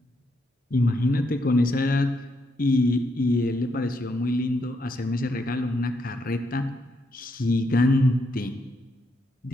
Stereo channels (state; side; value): normal; both; correlation 0.78